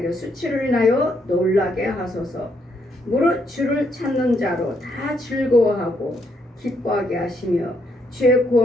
수치를 인하여 놀라게 하소서. 무릇 주를 찾는 자로 다 즐거워하고 기뻐하게 하시며 주의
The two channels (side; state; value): both; normal; correlation 0.74